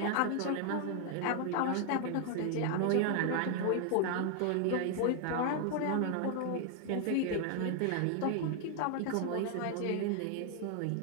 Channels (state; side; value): different; both; correlation 0.00